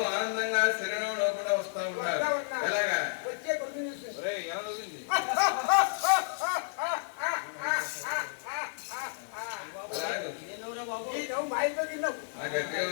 ఆనందంగా శరీరంలో కూడా వస్తా ఉన్నారు. ఎలాగా గట్టిగా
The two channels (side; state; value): right; silent; 57 dB below the other